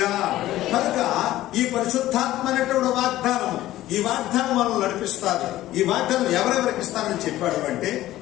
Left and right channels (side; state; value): right; quieter; 15.0 dB